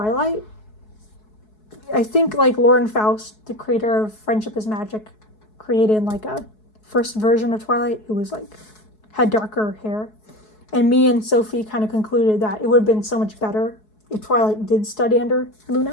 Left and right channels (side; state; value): right; late; 4.7 ms